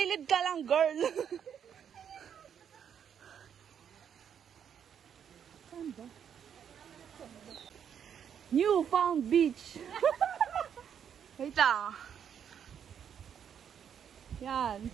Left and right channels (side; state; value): left; quieter; 8.3 dB